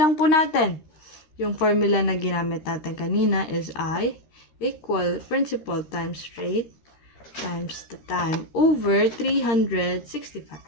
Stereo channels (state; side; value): late; right; 13 ms